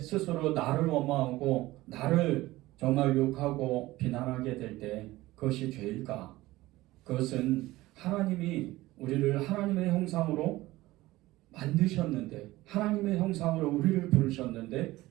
나를 원망하고 나를 정말 욕하고 비난하게 될 때 그것이 죄일까? 그것은 하나님이 우리를 하나님의 형상으로 만드셨는데, 하나님의 형상으로 우리를 부르셨는데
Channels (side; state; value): left; quieter; 18.0 dB